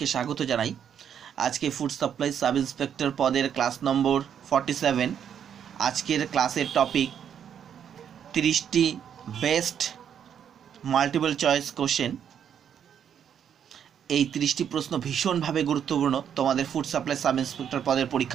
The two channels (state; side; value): quieter; left; 8.6 dB